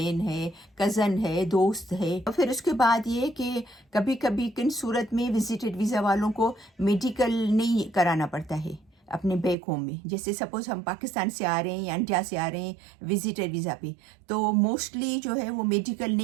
ہے، کزن ہے، دوست ہے۔ اور پھر اس کے بعد یہ کہ کبھی کبھی کن صورت میں وزٹڈ ویزا والوں کو میڈیکل نہیں کرانا پڑتا ہے اپنے بیک ہوم میں، جیسے سپوز ہم پاکستان سے آ رہے ہیں یا انڈیا سے آ رہے ہیں وزٹر ویزا پہ، تو موسٹلی جو ہے وہ میڈیکل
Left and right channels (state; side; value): drops out; left; at 9.6 s